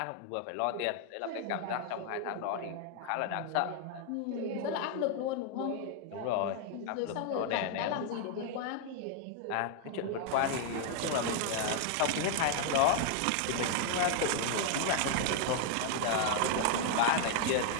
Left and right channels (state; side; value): different; both; correlation 0.00